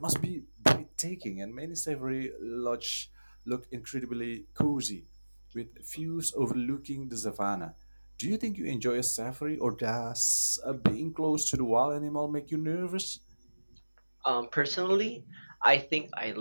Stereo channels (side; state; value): both; inverted; correlation -1.00